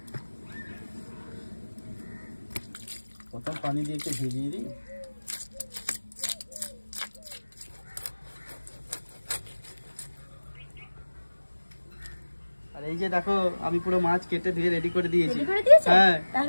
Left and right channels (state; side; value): inverted; both; correlation -1.00